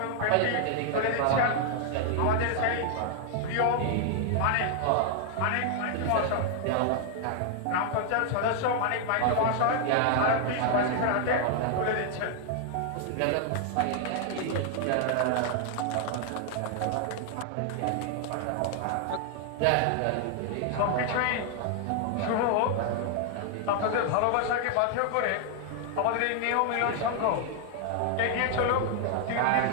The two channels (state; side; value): different; both; correlation 0.00